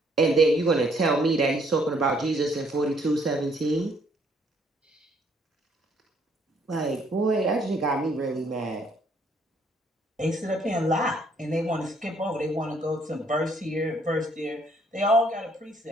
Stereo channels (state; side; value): normal; both; correlation 0.66